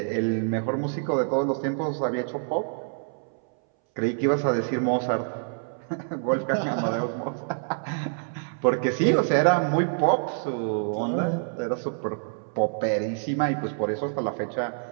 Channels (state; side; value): silent; left; 61 dB below the other